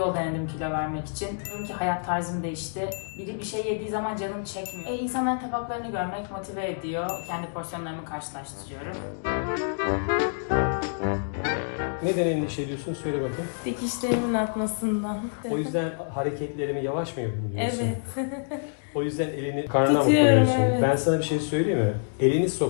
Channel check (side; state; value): right; silent; digital silence